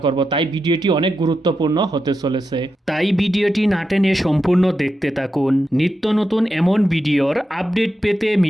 করব। তাই ভিডিওটি অনেক গুরুত্বপূর্ণ হতে চলেছে, তাই ভিডিওটি না টেনে সম্পূর্ণ দেখতে থাকুন। নিত্য নতুন এমন ভিডিওর আপডেট পেতে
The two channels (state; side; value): normal; both; correlation 0.88